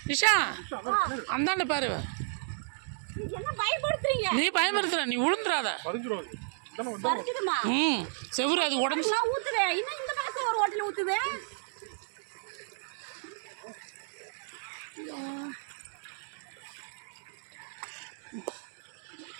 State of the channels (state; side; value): silent; left; digital silence